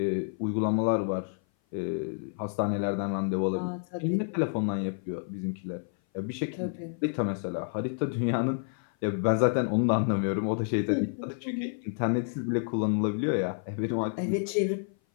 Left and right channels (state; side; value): silent; right; 56 dB below the other